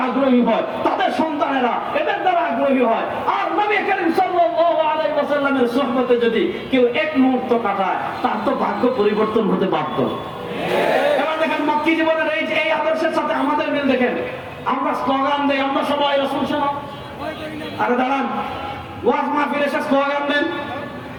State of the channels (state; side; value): identical; both; correlation 1.00